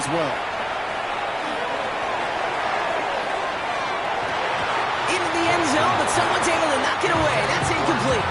well. Into the end zone, but someone's able to knock it away. That's incomplete.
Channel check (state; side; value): identical; both; correlation 1.00